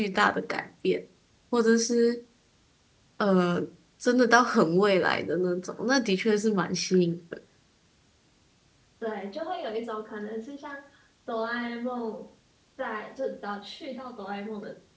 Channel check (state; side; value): identical; both; correlation 1.00